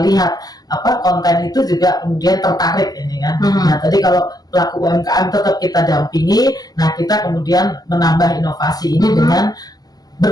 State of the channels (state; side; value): late; right; 0.19 ms